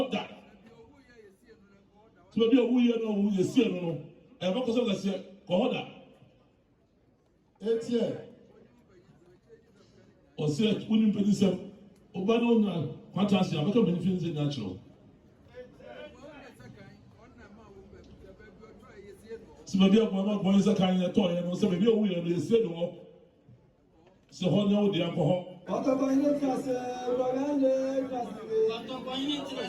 that. So maybe a wee no, you see, no, and what was I say? Kohoda. 8 years. Or say, wouldn't pay this up. Obano, fantastic. I'm not going to finish natural. So maybe I'm not going to Sakan at all, and so maybe a wee and you say no. So, how now the alcohol?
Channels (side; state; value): both; identical; correlation 1.00